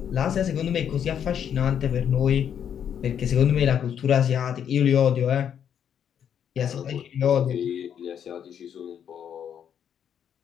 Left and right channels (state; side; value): quieter; right; 8.7 dB